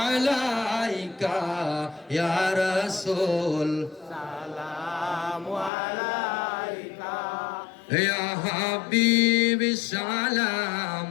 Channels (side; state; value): right; drops out; at 5.7 s